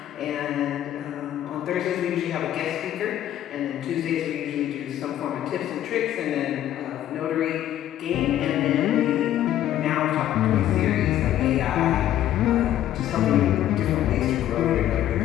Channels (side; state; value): right; quieter; 12.1 dB